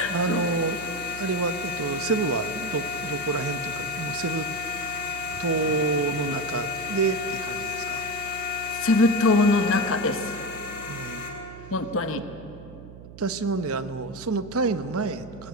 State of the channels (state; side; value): noise; right; hum, 16 dB below the sound